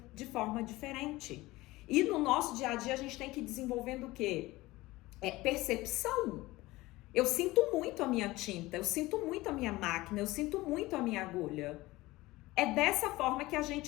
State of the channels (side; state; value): right; quieter; 19.5 dB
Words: de forma diferente. E no nosso dia a dia a gente tem que ir desenvolvendo o quê? Percepção. Eu sinto muito a minha tinta, eu sinto muito a minha máquina, eu sinto muito a minha agulha. É dessa forma que a